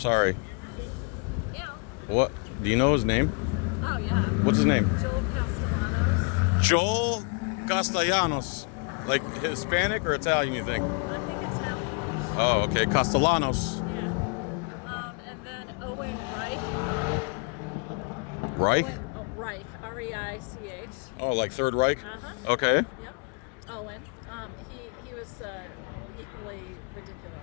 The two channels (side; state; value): right; quieter; 34.9 dB